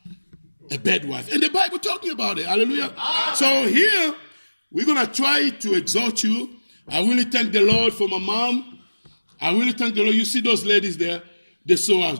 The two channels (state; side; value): inverted; both; correlation -1.00